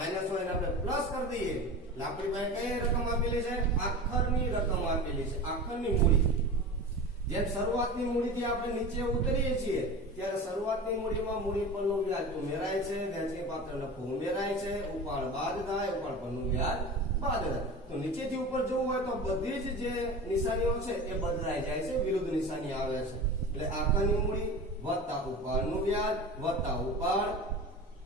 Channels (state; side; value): normal; both; correlation 0.32